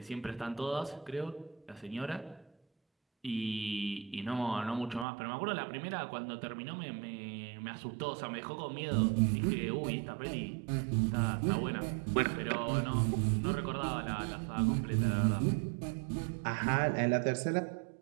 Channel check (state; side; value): drops out; left; at 5.1 s